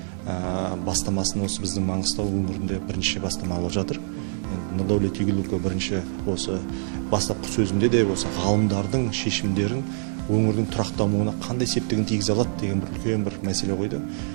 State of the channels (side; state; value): left; silent; 62 dB below the other